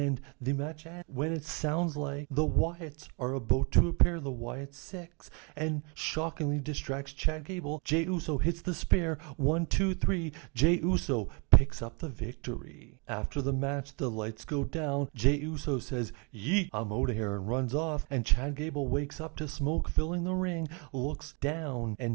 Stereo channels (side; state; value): left; quieter; 33.3 dB